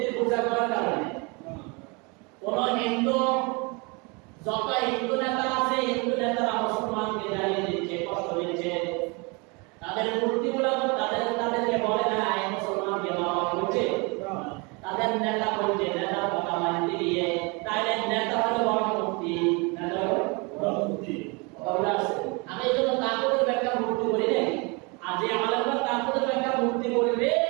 পূজা করার কারণে? কোন হিন্দু, যত হিন্দু নেতা আছে, হিন্দু নেতারা মুসলমানকে জ্বালিয়ে দিচ্ছে, কষ্ট দিচ্ছে। তাদের মূর্তিগুলো তাদেরকে বলে না এই মুসলমানকে মারা করছে, তাদের নেতা বলছে, নেতার কথা মানতে গিয়ে তাহলে নেতা হলো বড় মূর্তি, নেতা হলো বড় মূর্তি। আমি এই জন্য তাকুদের ব্যাখ্যা মূর্তি করি নাই। আর যে আলেমরা তাকুদের ব্যাখ্যা মূর্তি করবে,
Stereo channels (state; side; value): quieter; left; 29.5 dB